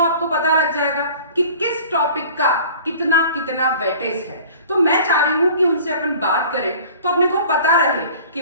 पता लग जाएगा कि किस टॉपिक का कितना कितना वेटेज है। तो मैं चाह रही हूं कि उनसे अपन बात करें तो अपने को पता रहे कि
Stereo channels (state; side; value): inverted; both; correlation -0.45